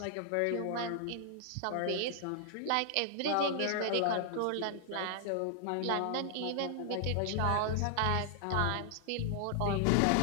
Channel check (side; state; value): both; different; correlation 0.00